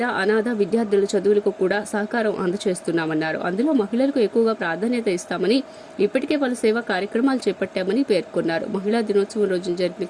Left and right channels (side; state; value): both; identical; correlation 1.00